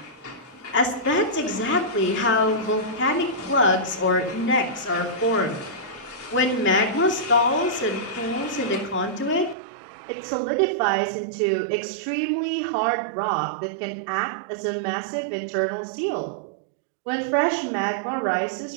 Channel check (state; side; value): drops out; left; at 9.6 s